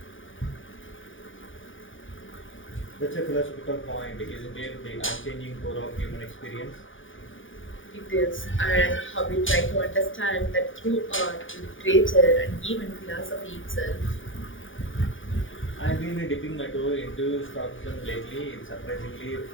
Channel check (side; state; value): right; late; 0.57 ms